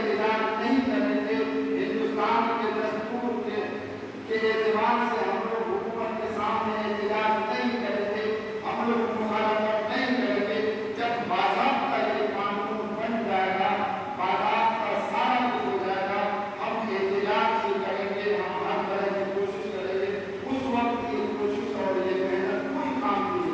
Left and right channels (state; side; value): identical; both; correlation 1.00